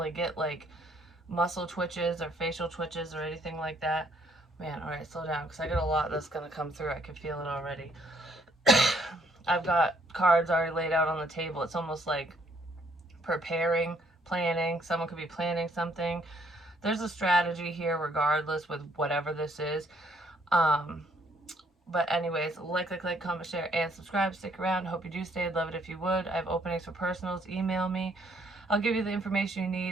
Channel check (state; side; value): normal; both; correlation 0.67